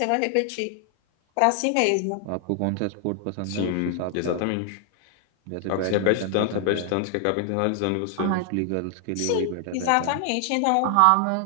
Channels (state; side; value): different; both; correlation 0.00